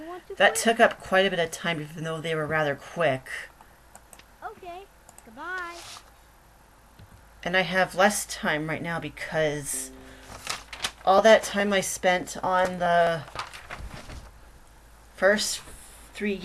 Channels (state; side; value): identical; both; correlation 1.00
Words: want to that play? took up quite a bit of time, even though they were rather quick. Okay. Goodbye. And I have less time right now because all that time I spent on the first 3